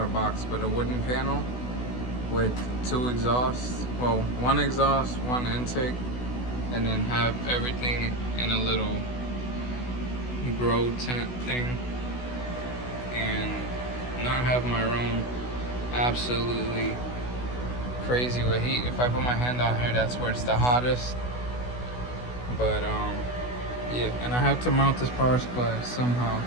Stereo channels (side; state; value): right; late; 16 ms